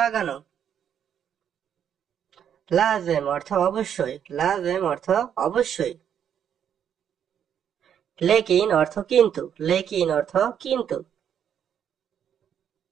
লাজেম অর্থ অবশ্যই। লাজেম অর্থ অবশ্যই। লেকিন অর্থ কিন্তু। লেকিন অর্থ কিন্তু।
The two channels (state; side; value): quieter; left; 8.8 dB